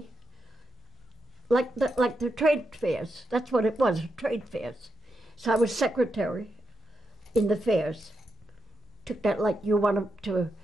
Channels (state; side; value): normal; both; correlation 0.85